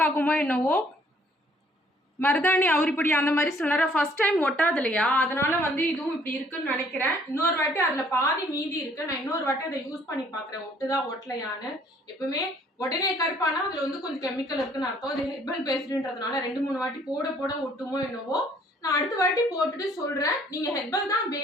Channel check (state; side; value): normal; both; correlation 0.61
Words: ஆகுமோ என்னவோ. மருதாணி அவுரிப்பொடி அந்த மாதிரி சில ஃபர்ஸ்ட் டைம் ஒட்டாது இல்லையா, அதனால வந்து இதுவும் இப்படி இருக்குன்னு நினைக்கிறேன். இன்னொரு வாட்டி அதில் பாதி மீதி இருக்கு. நான் இன்னொரு வாட்டி அதை யூஸ் பண்ணி பார்க்குறேன், ஒட்டுதா ஒட்டலையான்னு. எப்பவுமே உடனே கருப்பானா அதில் வந்து கொஞ்சம் கெமிக்கல் இருக்குன்னு அர்த்தம். அது ஹெர்பல் பேஸ்டுன்றதுனால 2-3 வாட்டி போட போட ஒட்டுமோ என்னவோ. நான் அடுத்த வாட்டி போட்டுட்டு சொல்கிறேன். நீங்கள் ஹெர்பல் தான்